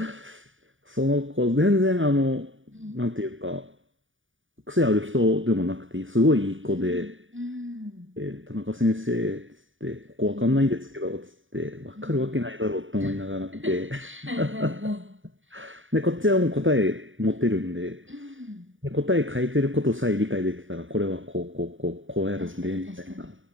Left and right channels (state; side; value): late; left; 0.57 ms